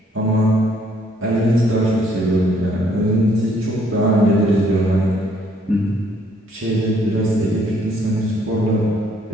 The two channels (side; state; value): both; normal; correlation 0.66